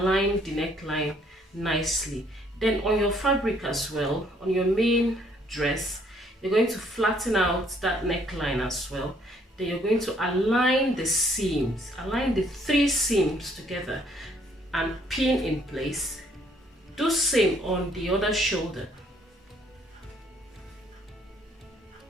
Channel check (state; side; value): normal; both; correlation 0.65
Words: the neckline nicely. Then on your fabric as well, on your main dress, you're going to flatten out that neckline as well. Then you're going to align the seams, align the 3 seams together and pin in place. Do same on the other shoulder.